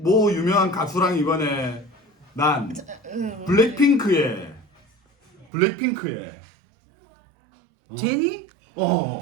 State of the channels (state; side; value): drops out; left; at 5.5 s